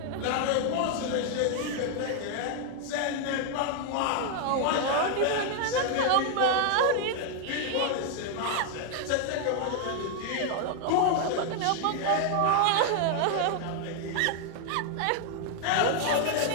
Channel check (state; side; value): different; both; correlation 0.00